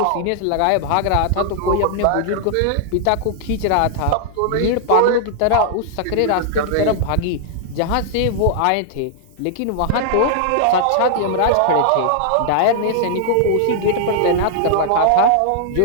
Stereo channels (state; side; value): different; both; correlation -0.01